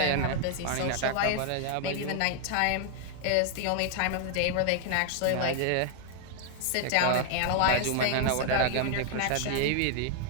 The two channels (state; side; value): different; both; correlation 0.00